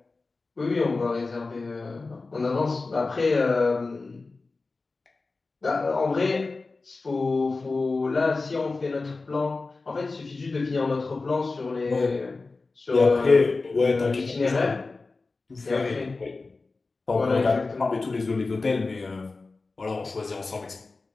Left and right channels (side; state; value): right; quieter; 3.7 dB